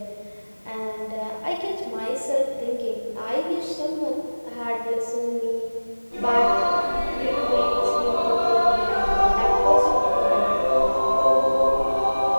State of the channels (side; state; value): both; inverted; correlation -1.00